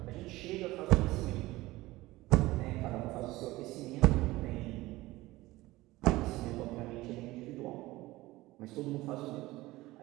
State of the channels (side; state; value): left; quieter; 18.8 dB